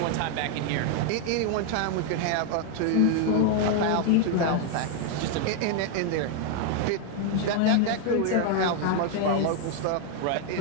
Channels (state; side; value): different; both; correlation 0.01